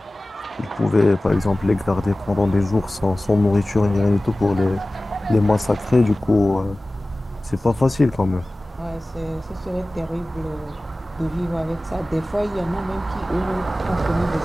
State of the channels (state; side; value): normal; both; correlation 0.97